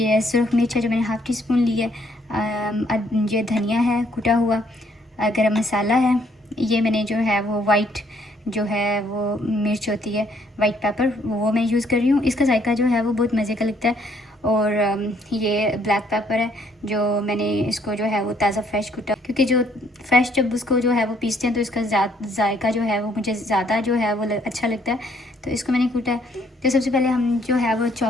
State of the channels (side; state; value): both; normal; correlation 0.67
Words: सुरख मिर्च है जो मैंने हाफ़ टी स्पून ली है। ये धनिया है कुटा हुआ, गरम मसाला है। ये मैंने जो है वो वाइट जो है वो मिर्च होती है, वाइट पेपर, वो मैं यूज़ कर रही हूँ। इसका जायका जो है वो बहुत मज़े का लगता है। और ये ब्लैक पेपर है जो मैंने इसको जो है वो ताज़ा फ्रेश कुटा, क्योंकि जो फ्रेश जब उसको जो है वो पीसते हैं तो इसका जायका जो है वो मुझे ज़्यादा जो है वो अच्छा लगता है, तो इसको मैंने कूटा है। तो सबसे पहले हम जो है वो